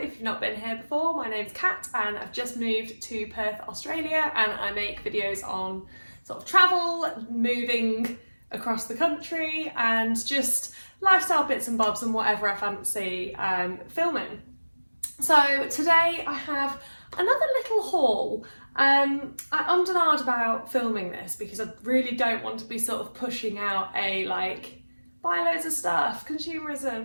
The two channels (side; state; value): both; inverted; correlation -1.00